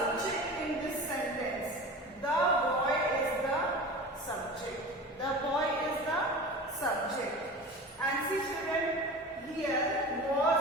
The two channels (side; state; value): both; normal; correlation 0.34